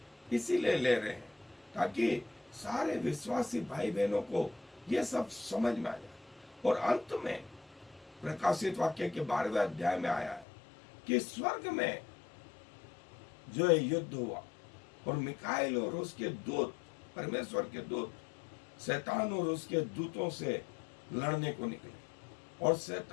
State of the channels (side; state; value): right; drops out; at 10.5 s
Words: इसीलिए ले रहे हैं ताकि सारे विश्वासी भाई बहनों को ये सब समझ में आ जाए। और अंत में प्रकाशित वाक्य के 12वें अध्याय में आया है कि स्वर्ग में जो है युद्ध हुआ और मिकाएल और उसके दूत, परमेश्वर के दूत, शैतान और उसके दूतों से लड़ने को निकले, और